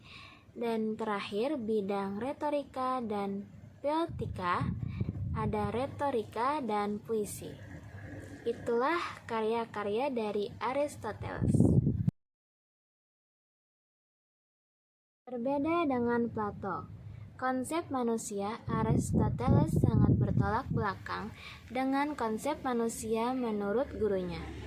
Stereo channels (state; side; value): identical; both; correlation 1.00